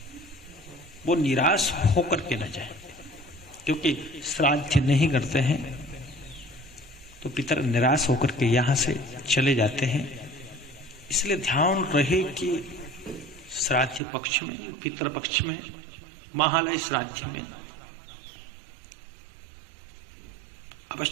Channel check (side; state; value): left; drops out; at 14.0 s